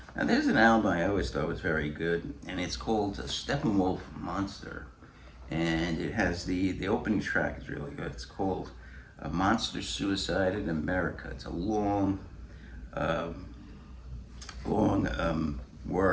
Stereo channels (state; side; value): identical; both; correlation 1.00